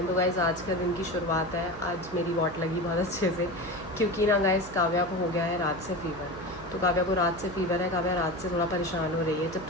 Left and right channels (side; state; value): right; noise; hum, 17 dB below the sound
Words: तो गाइज़ आज का दिन की शुरुआत है, आज मेरी वॉट लगी बहुत अच्छे से, क्योंकि ना गाइज़ काव्या को हो गया है रात से फीवर। तो काव्या को रात से फीवर है, काव्या रात से थोड़ा परेशान हो रही है। जब